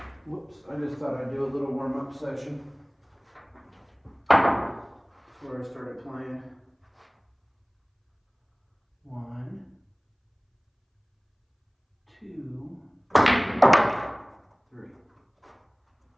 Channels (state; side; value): identical; both; correlation 1.00